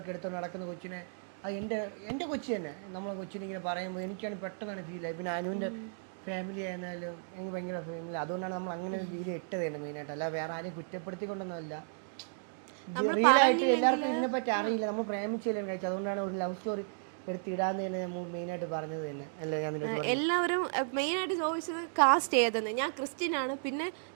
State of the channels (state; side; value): silent; left; digital silence